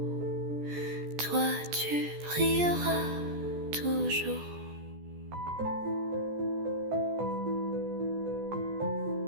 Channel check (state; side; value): late; left; 14 ms